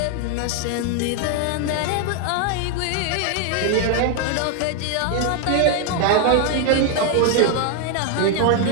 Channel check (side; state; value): both; different; correlation 0.00